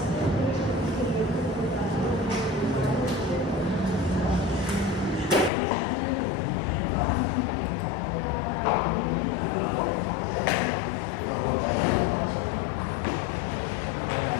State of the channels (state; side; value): drops out; right; at 5.5 s